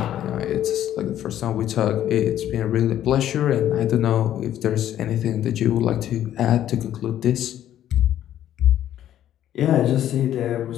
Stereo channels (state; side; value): quieter; right; 11.6 dB